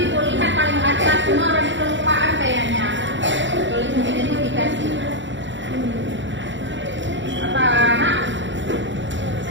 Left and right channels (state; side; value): late; left; 0.54 ms